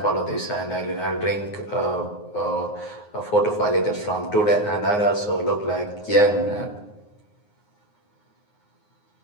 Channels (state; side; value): late; right; 9.6 ms